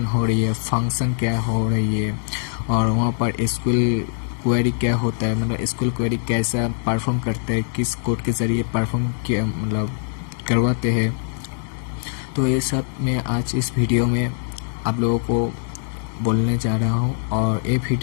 हो रही है, फंक्शन क्या हो रही है, और वहाँ पर एसक्यूएल क्वेरी क्या होता है, मतलब एसक्यूएल क्वेरी कैसा परफॉर्म करते हैं, किस कोड के ज़रिए परफॉर्म किया मतलब करवाते हैं। तो ये सब मैं आज इस वीडियो में आप लोगों को बोलने जा रहा हूँ, और ये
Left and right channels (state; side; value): silent; right; digital silence